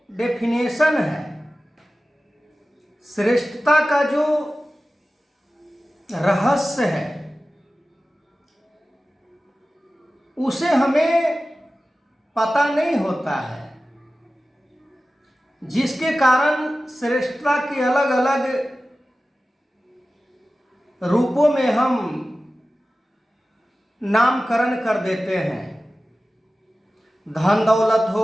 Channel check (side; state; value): both; normal; correlation 0.95